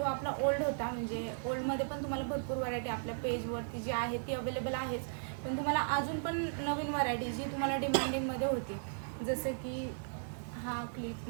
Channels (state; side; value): silent; left; digital silence